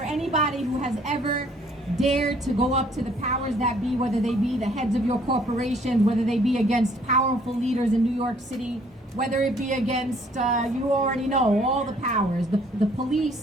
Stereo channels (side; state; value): both; normal; correlation 0.61